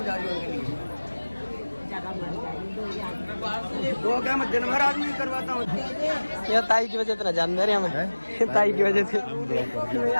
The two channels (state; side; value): inverted; both; correlation -1.00